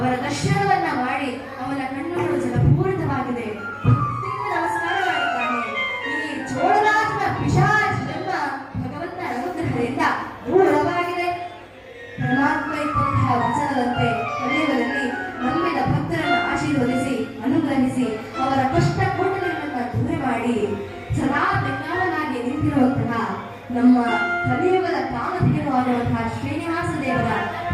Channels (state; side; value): identical; both; correlation 1.00